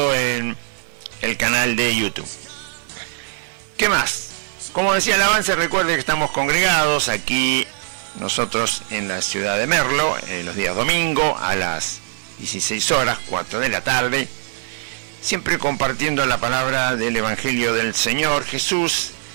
en el canal de YouTube. ¿Qué más? Como decía el avance, recuerde que estamos congregados aquí nosotros en la ciudad de Merlo, los días domingo a las 16 horas, 4 de la tarde, siempre compartiendo la palabra del Evangelio del Señor Jesús,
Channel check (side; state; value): left; silent; digital silence